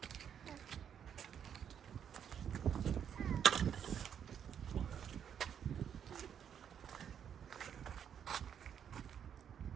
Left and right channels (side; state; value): left; quieter; 8.5 dB